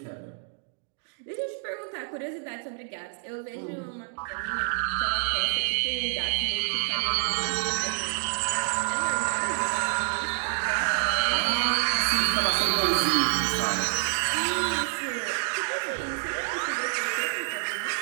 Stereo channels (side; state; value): left; silent; digital silence